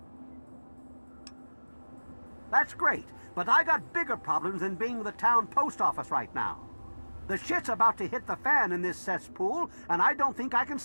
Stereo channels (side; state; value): both; inverted; correlation -1.00